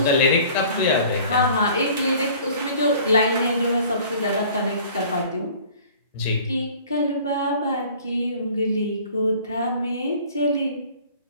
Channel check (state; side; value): inverted; both; correlation -0.49